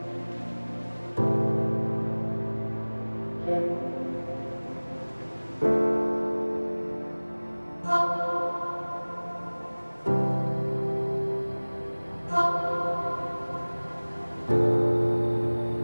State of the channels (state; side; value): inverted; both; correlation -1.00